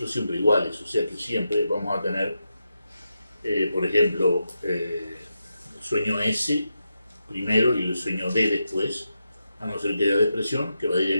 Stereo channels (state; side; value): inverted; both; correlation -0.87